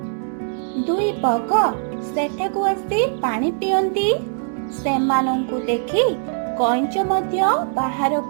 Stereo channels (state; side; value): silent; left; digital silence